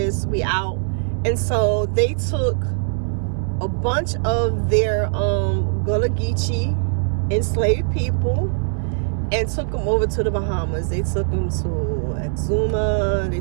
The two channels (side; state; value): left; silent; 64 dB below the other